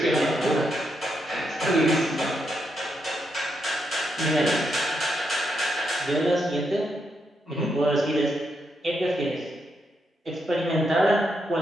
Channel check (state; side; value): normal; both; correlation 0.81